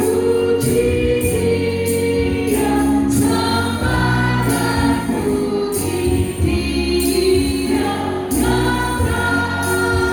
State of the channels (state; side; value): identical; both; correlation 1.00